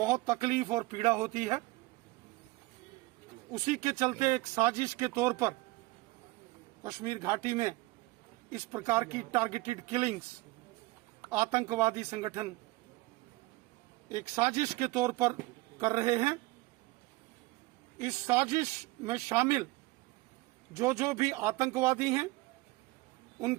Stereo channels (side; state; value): left; quieter; 21.7 dB